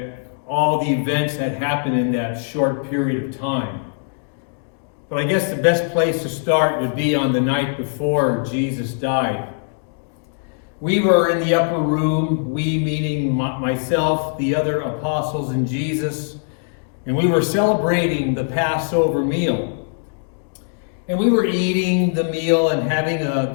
all the events that happened in that short period of time. But I guess the best place to start would be on the night before Jesus died. We were in the upper room, we meaning myself, the other apostles, and Jesus, and we were celebrating the Passover meal. And we were eating the meal and having a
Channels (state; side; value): silent; right; digital silence